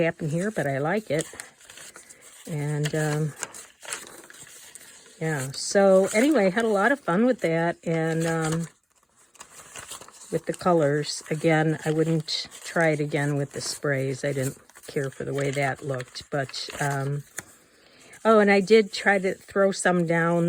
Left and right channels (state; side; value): identical; both; correlation 1.00